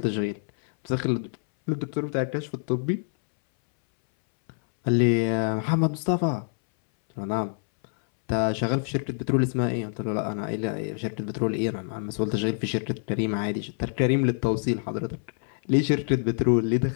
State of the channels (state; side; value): silent; right; 61 dB below the other